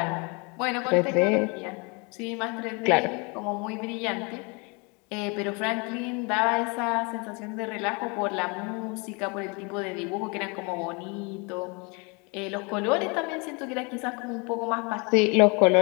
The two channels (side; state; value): right; quieter; 30.6 dB